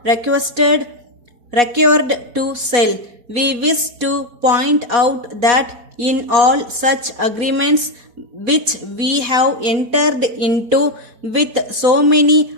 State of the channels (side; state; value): left; late; 4.4 ms